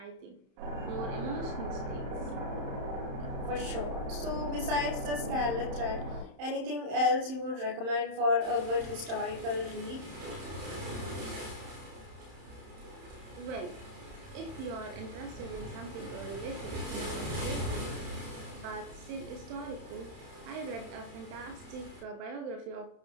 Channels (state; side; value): late; left; 31 ms